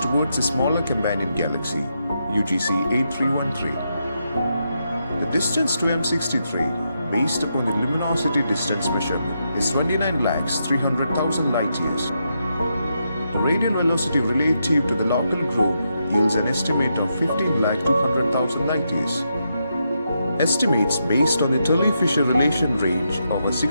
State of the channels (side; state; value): both; inverted; correlation -0.82